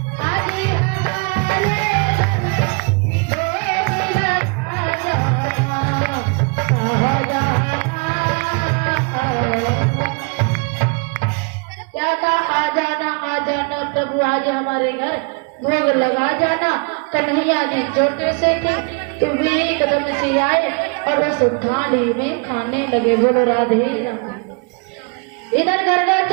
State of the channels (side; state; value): left; quieter; 33.6 dB